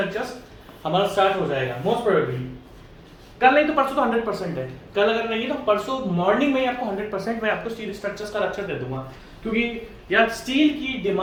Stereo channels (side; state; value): both; identical; correlation 1.00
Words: हमारा स्टार्ट हो जाएगा मोस्ट प्रोबेबली। कल नहीं तो परसों तो 100% है, कल अगर नहीं तो परसों मॉर्निंग में ही आपको 100% मैं आपको स्टील स्ट्रक्चर्स का लेक्चर दे दूंगा। क्योंकि यार स्टील की